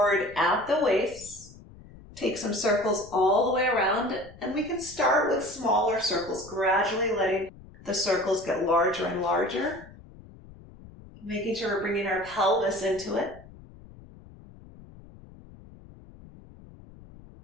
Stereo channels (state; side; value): noise; left; rumble, 20 dB below the sound